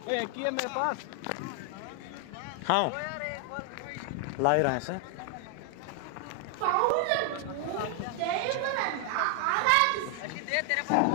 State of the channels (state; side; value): different; both; correlation 0.00